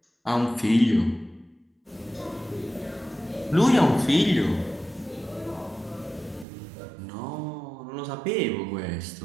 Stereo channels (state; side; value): drops out; left; at 6.5 s